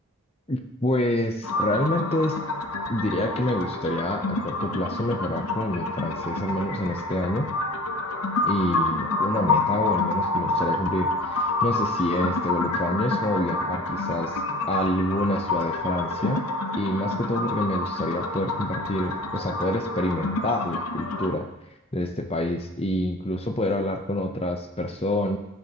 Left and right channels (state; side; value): normal; both; correlation 0.46